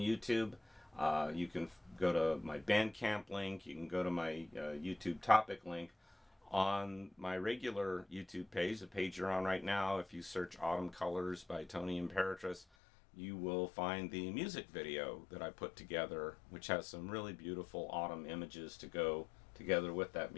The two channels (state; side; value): drops out; right; at 12.7 s